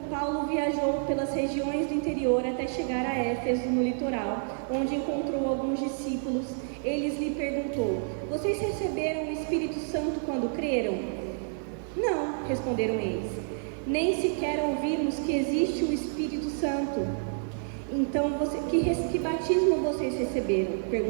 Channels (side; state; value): left; silent; digital silence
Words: Paulo viajou pelas regiões do interior até chegar a Éfeso, no litoral, onde encontrou alguns discípulos. Eles lhe perguntou, vocês receberam o Espírito Santo quando creram? Não, responderam eles. Nem sequer ouvimos que existe o Espírito Santo. Então, que batismo vocês receberam?